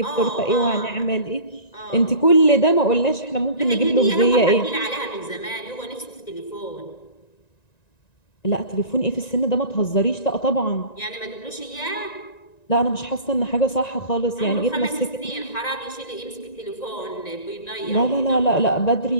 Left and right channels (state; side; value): late; right; 1.9 ms